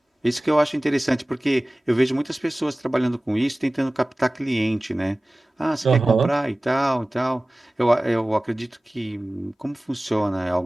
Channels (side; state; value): both; normal; correlation 0.98